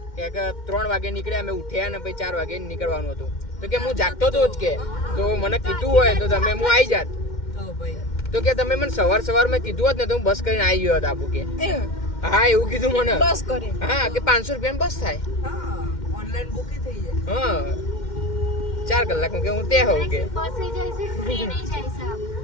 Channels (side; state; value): right; late; 2.1 ms